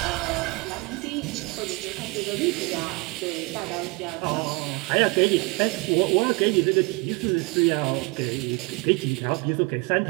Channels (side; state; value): left; quieter; 26.7 dB